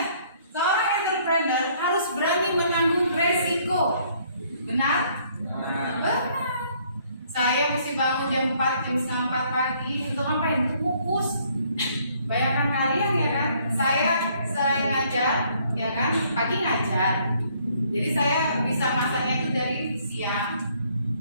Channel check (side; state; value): both; inverted; correlation -0.64